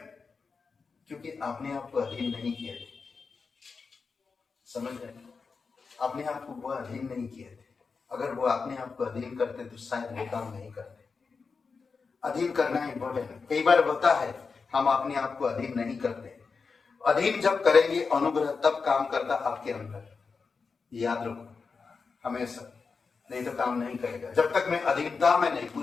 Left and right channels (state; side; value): quieter; right; 4.9 dB